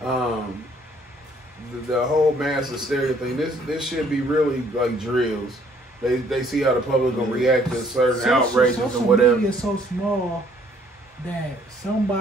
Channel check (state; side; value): normal; both; correlation 0.62